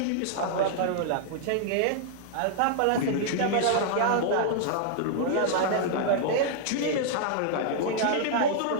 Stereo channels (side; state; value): both; different; correlation -0.01